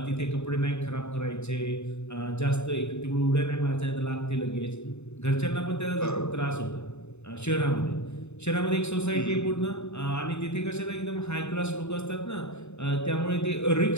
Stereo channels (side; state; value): right; late; 0.81 ms